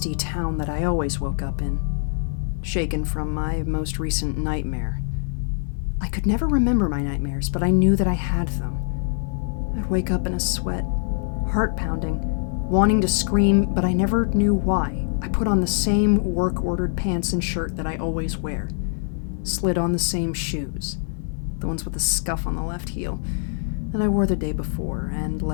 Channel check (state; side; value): silent; right; 63 dB below the other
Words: town that I always woke up in, shaken from my most recent nightmare. I could never remember my nightmares, but I knew that I had them. I'd wake up in a sweat, heart pounding, wanting to scream, but I never knew why. I put on the same work-ordered pants and shirt that I always wear, slid on the same shoes, the ones with the scuff on the left heel, that I wore the day before, and